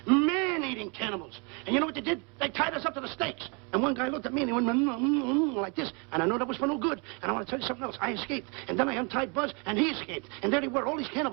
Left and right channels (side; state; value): left; quieter; 33.2 dB